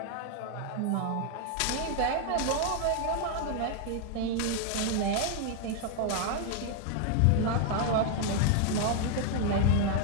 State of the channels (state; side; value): different; both; correlation 0.00